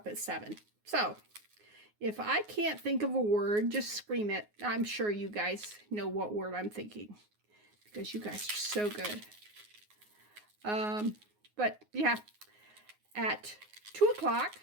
at 7. So if I can't think of a word, just scream it. I'm sure you guys know what word I'm thinking because you guys are so good. But yeah, at 2 o'clock,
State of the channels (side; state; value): left; late; 9.5 ms